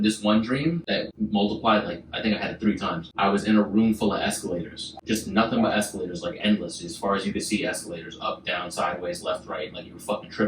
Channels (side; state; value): both; identical; correlation 1.00